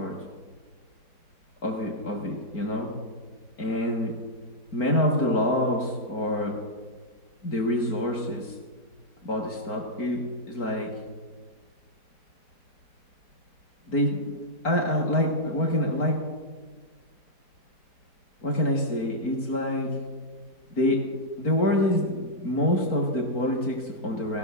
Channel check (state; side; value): late; right; 4.5 ms